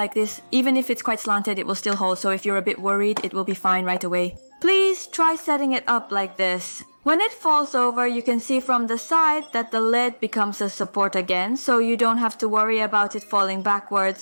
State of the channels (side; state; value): both; inverted; correlation -1.00